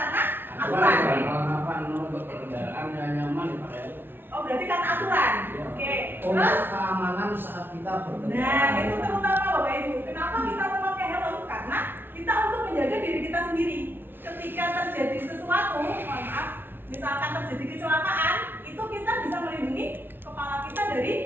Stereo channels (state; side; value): late; left; 0.10 ms